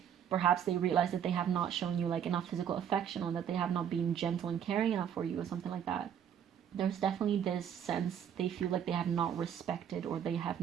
Perhaps they realize that they have not shown you like enough physical affection, or that they have not been gentle and caring enough for you, or something like that. There's definitely this sense they feel like they have not respected, or they have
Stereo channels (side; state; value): left; quieter; 8.9 dB